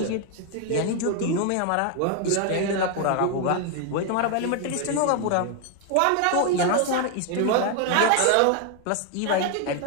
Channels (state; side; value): different; both; correlation 0.01